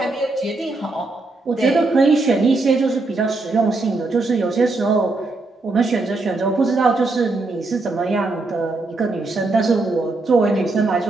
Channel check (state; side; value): quieter; left; 3.3 dB